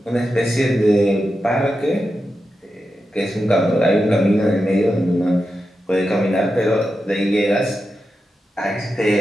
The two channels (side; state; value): both; normal; correlation 0.89